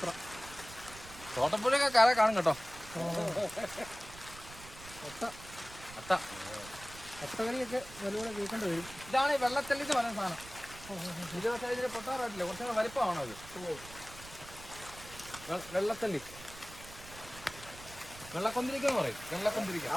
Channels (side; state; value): right; noise; rumble, 16 dB below the sound